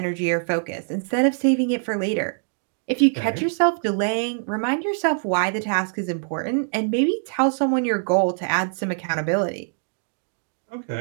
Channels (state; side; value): silent; left; digital silence